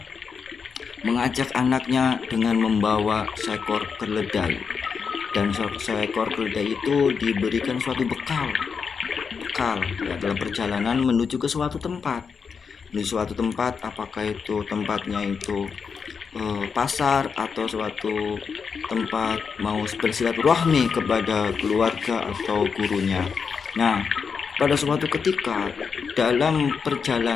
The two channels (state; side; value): quieter; right; 5.9 dB